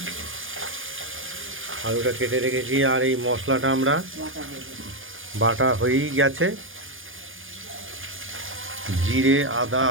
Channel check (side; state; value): left; late; 0.59 ms